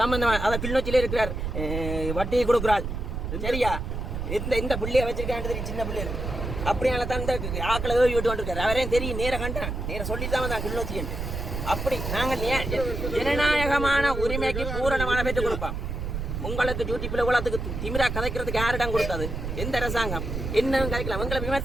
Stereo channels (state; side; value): noise; right; rumble, 4 dB below the sound